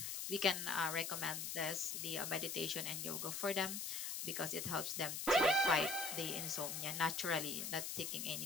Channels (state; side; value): noise; left; hiss, 4 dB below the sound